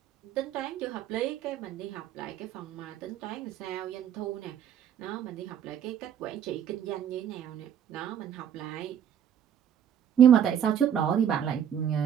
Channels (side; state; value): left; quieter; 9.2 dB